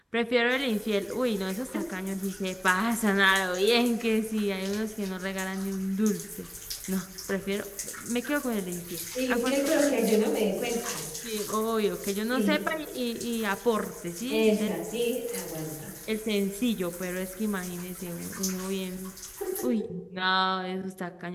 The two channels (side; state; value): both; identical; correlation 1.00